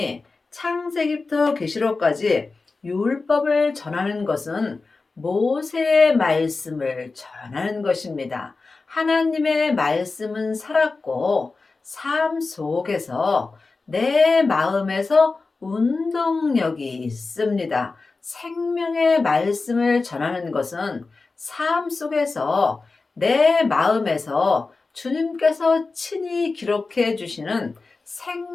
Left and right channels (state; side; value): quieter; right; 3.9 dB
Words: 창세기부터 계시록까지 율법을 전하는 것은 모세의 말씀을 전하는 것입니다. 하나님의 말씀은 살았고 삶 속에서 내 마음에서 운동력이 있습니다. 생명의 말씀을 전하는 것은 삶 속에서 내 마음에서 주님께서 친히 기록해 주시는